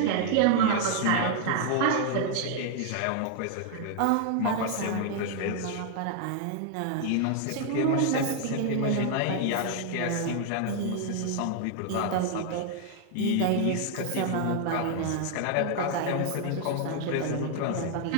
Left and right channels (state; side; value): different; both; correlation 0.00